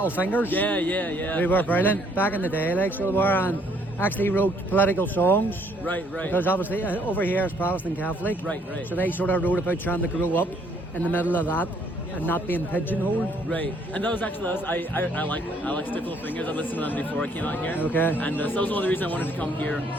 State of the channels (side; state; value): both; normal; correlation 0.65